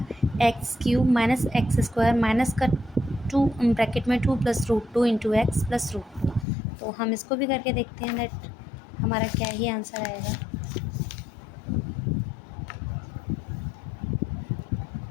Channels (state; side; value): drops out; right; at 6.5 s